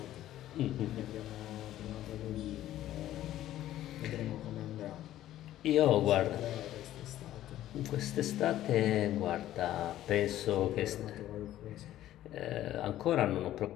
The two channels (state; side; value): quieter; right; 13.4 dB